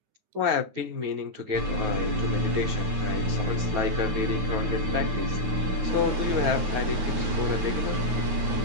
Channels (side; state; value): left; late; 9.4 ms